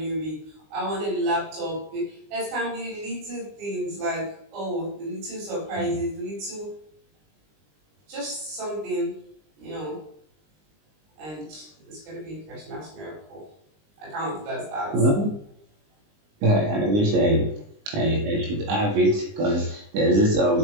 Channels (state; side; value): late; left; 20 ms